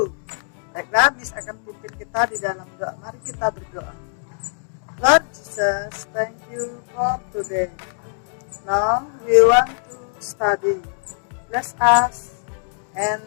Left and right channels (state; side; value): silent; right; 61 dB below the other